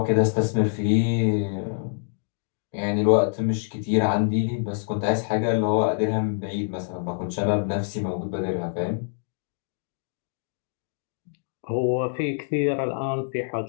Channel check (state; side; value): silent; right; digital silence